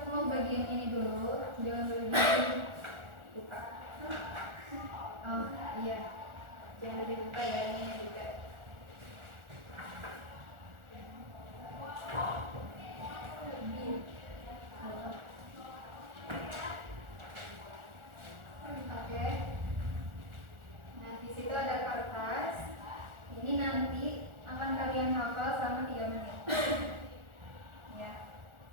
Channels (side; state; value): left; late; 1.4 ms